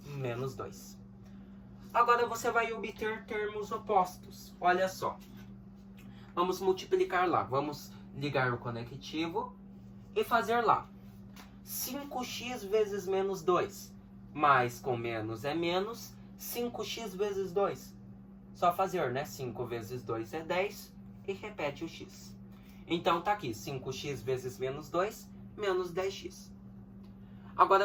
menos 2. Agora, você vai obter termos opostos. Olha só. Vamos multiplicar lá. Vamos ligar o conectivo e fazer lá. 5x vezes menos 2. Mais com menos é menos. 5x vezes 2. Só fazer, né? 5 vezes 2 é 10. E repete o x. Então, tá aqui. 5x vezes menos 2, menos 10x.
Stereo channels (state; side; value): identical; both; correlation 1.00